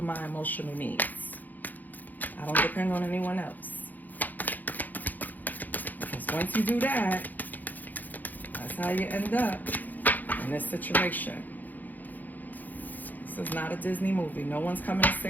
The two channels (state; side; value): late; right; 0.084 ms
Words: my emotional needs. I don't depend on anyone else. Because once you do that, that's how you end up in this situation. This is not a Disney movie. No one's coming to